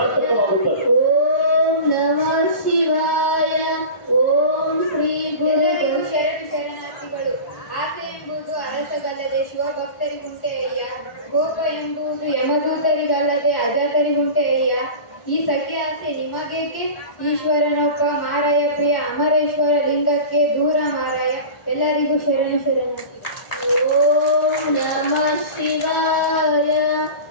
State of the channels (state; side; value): late; right; 1.4 ms